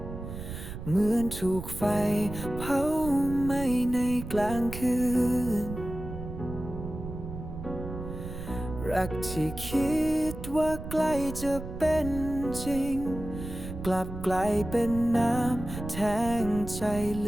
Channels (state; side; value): noise; right; rumble, 9 dB below the sound